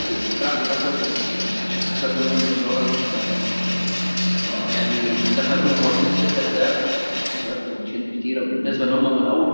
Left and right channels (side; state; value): both; inverted; correlation -1.00